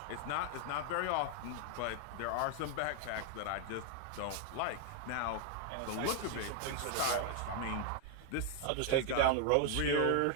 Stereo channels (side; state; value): both; different; correlation 0.00